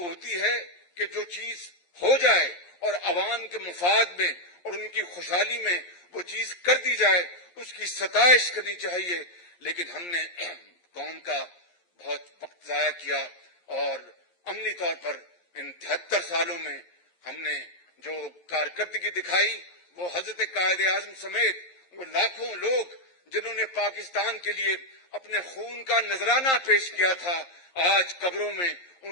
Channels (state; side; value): late; right; 11 ms